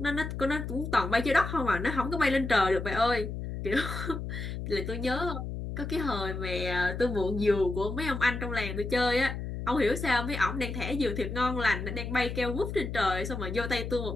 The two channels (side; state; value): left; noise; hum, 6 dB below the sound